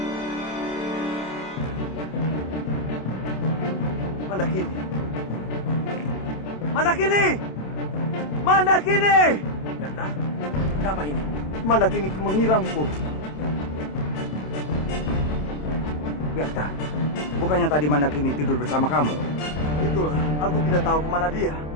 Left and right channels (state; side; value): late; right; 27 ms